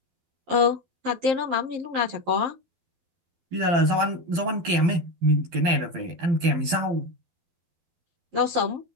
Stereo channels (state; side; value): late; left; 12 ms